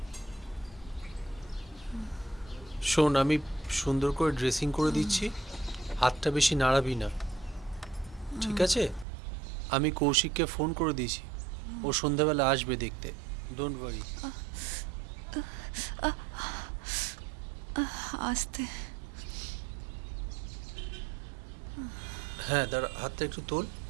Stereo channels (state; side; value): drops out; left; at 9.1 s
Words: শোন, আমি সুন্দর করে ড্রেসিং করে দিচ্ছি, হাতটা বেশি নাড়াবি না, ঠিক আছে? আমি কৌশিককে ফোন করে দিয়েছি, ও সন্ধ্যাবেলা আসবে দেখতে, ডোন্ট ওয়ারি। আস্তে। হ্যাঁ দাঁড়া, হাতটা একটু তোল।